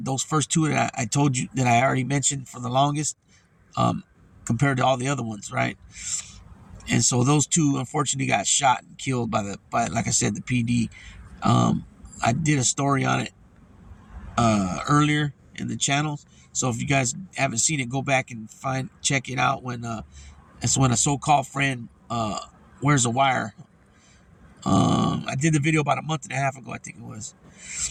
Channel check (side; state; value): both; identical; correlation 1.00